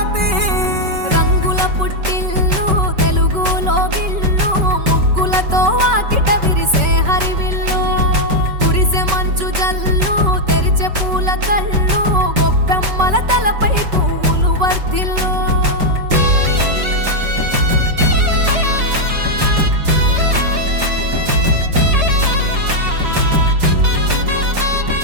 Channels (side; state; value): left; late; 5.3 ms